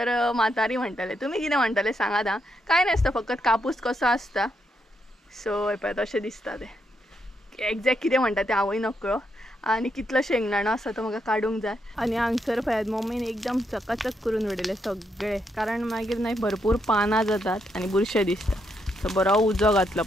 म्हातारी म्हणटाले. तुमी कितें म्हणटाले सांगात हां. कांय नासता, फकत कापूस कसो आसता. सो हे पळयात अशें दिसता तें. एक्झॅक्ट कितें म्हणटा तें हांवूय नकळो. आनी कितलो शेंगदाणो आसा तो म्हाका काडूंक जाय. आनी हांगसर पळयात मम्मीन एकदम चकाचक करून उडयले सगळे, कारण मागीर न्हय भरपूर पानां जातात आनी बुरशें दिसता. सो बरो उजो घातलो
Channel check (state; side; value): normal; both; correlation 0.80